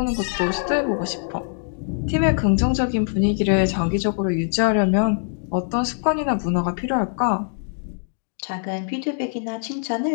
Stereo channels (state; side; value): silent; right; digital silence